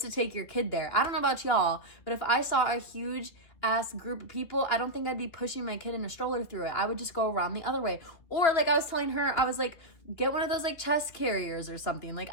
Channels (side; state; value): right; late; 3.1 ms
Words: to take your kid there. I don't know about y'all, but if I saw a huge ass group of people, I don't think I'd be pushing my kid in a stroller through it. I would just go around the other way. Or like I was telling her, I was like, get one of those like chest carriers or something. Like,